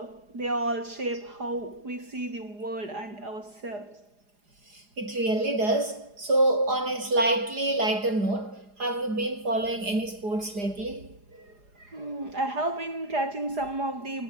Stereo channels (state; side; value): late; left; 4.9 ms